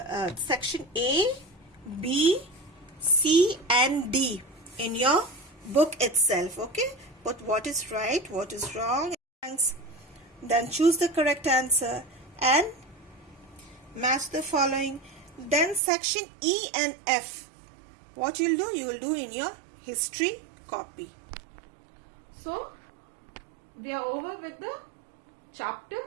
section A, B, C and D in your book itself. Okay, but what is right, what is wrong, then choose the correct answer and match the following. Then section E and F, what you'll do, you will do in your history copy. So we are over with the chapter,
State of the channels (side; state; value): left; drops out; at 15.8 s